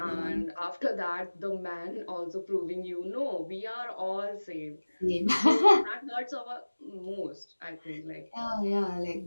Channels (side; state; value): both; inverted; correlation -1.00